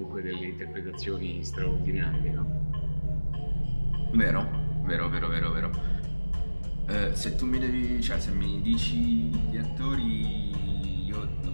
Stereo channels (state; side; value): inverted; both; correlation -1.00